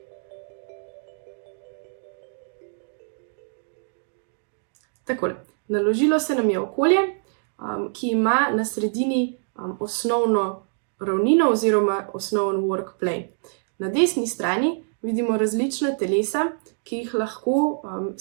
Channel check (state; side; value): silent; left; digital silence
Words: Takole, naložilo se nam je okolje, ki ima na sredini osnovno ravnino oziroma osnoven work plane. Na desni strani vidimo različna telesa, ki jih lahko